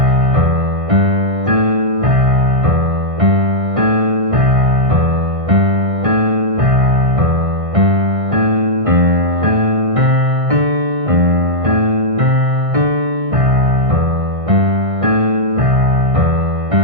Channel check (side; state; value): left; late; 1.6 ms